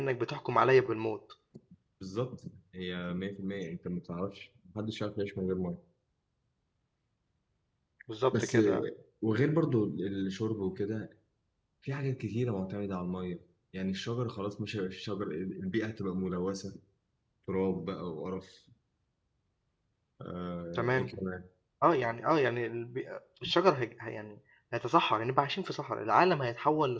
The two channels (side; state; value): both; identical; correlation 1.00